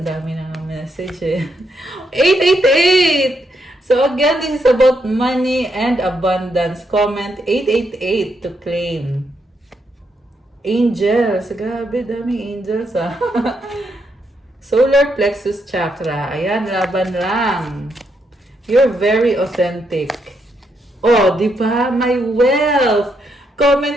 dami na ng message eh. 888! So again, this is about money and abundance. Comment 888 to claim. Angels. Grabe, daming angels ah. Solar plexus chakra. Ayan, laban lang. You're very authentic. Oh, di ba? My wealth.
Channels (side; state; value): both; normal; correlation 0.79